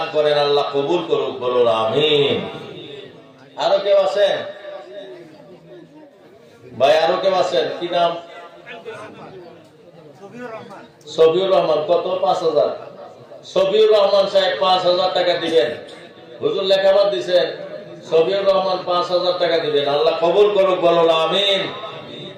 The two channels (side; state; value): both; identical; correlation 1.00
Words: করেন, আল্লাহ কবুল করুক, বলুন আমিন। আরো কেউ আছেন ভাই? আরো কেউ আছেন? কি নাম? সফিউর রহমান। কত? 5000। সফিউর রহমান সাহেব 5000 টাকা দিবেন। হুজুর লেখাবাদ দিছেন, সফিউর রহমান 5000 টাকা দিবেন, আল্লাহ কবুল করুক, বলুন আমিন।